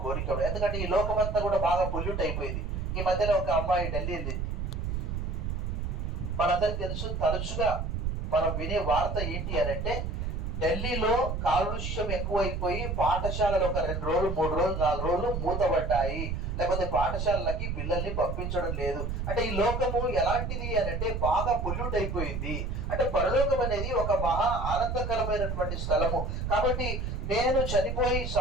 కోరిక. ఎందుకంటే ఈ లోకం అంతా కూడా బాగా పొల్యూట్ అయిపోయింది. ఈ మధ్యలో ఒక అమ్మాయి ఢిల్లీ వెళ్ళింది. మనందరికి తెలుసు, తరచుగా మనం వినే వార్త ఏంటి అని అంటే ఢిల్లీలో కాలుష్యం ఎక్కువైపోయి పాఠశాలలు ఒక 2 రోజులు 3 రోజులు 4 రోజులు మూతబడ్డాయి, లేకపోతే పాఠశాలలకి పిల్లల్ని పంపించడం లేదు. అంటే ఈ లోకము ఎలాంటిది అని అంటే బాగా పొల్యూట్ అయిపోయింది. అంటే పరలోకం అనేది ఒక మహా ఆనందకరమైనటువంటి స్థలము. కాబట్టి నేను చనిపోయి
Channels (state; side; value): noise; right; rumble, 2 dB below the sound